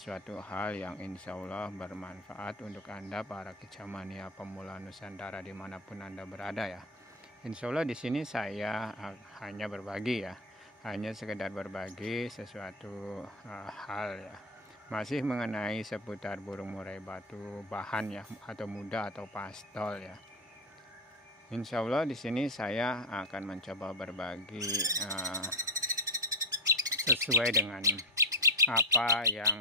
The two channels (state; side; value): normal; both; correlation 0.12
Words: hal yang insya Allah bermanfaat untuk Anda para kicamania pemula Nusantara dimanapun Anda berada ya. Insya Allah di sini saya hanya berbagi ya, hanya sekedar berbagi sesuatu hal ya, masih mengenai seputar burung murai batu bahan ya, atau muda atau pastol ya. Insya Allah di sini saya akan mencoba berbagi sesuai dengan apa